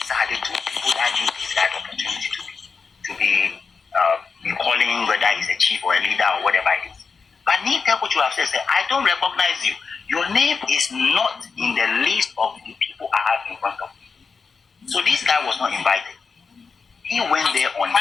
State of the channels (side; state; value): right; quieter; 5.1 dB